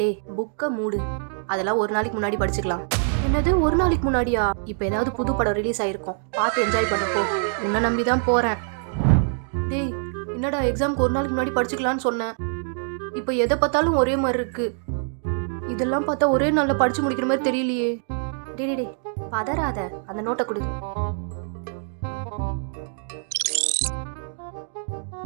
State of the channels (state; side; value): silent; left; 62 dB below the other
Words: புக்க மூடு. அதெல்லாம் ஒரு நாளைக்கு முன்னாடி படிச்சுக்கலாம். என்னது ஒரு நாளைக்கு முன்னாடியா? இப்ப ஏதாவது புது படம் ரிலீஸ் ஆயிருக்கும். பார்த்து என்ஜாய் பண்ணு போ. உன்னை நம்பி தான் போறேன். டேய் என்னடா எக்ஸாமுக்கு ஒரு நாளைக்கு முன்னாடி படிச்சுக்கலாம்னு சொன்னேன். இப்ப எதை பார்த்தாலும் ஒரே மாதிரி இருக்கு. இதெல்லாம் பார்த்தா ஒரே நாள்ல படிச்சு முடிக்கிற மாதிரி தெரியலையே. டேய் பதறாத. அந்த நோட்டை கொடு.